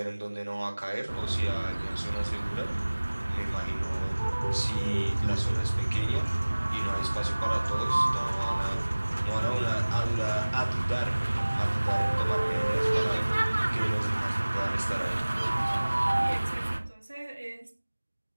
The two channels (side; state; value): both; inverted; correlation -1.00